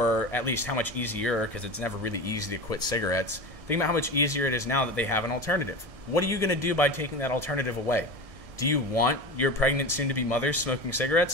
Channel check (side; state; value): left; late; 1.6 ms